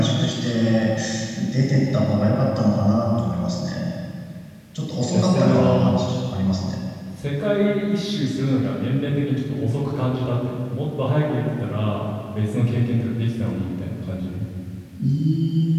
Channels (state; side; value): identical; both; correlation 1.00